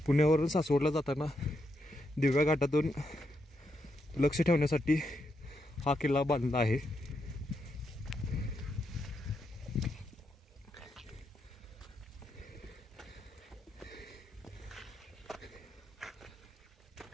पुण्यावरून सासवडला जाताना दिव्या घाटातून लक्ष ठेवण्यासाठी हा किल्ला बांधला आहे.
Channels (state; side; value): normal; both; correlation 0.82